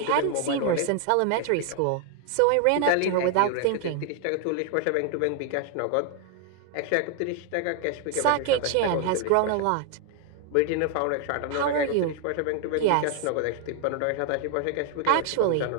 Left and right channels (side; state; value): both; different; correlation 0.00